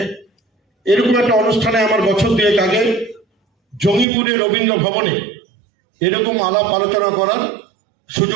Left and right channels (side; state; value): left; drops out; at 4.0 s